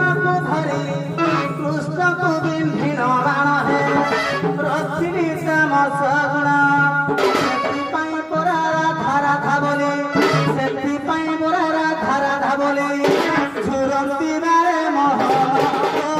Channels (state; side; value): identical; both; correlation 1.00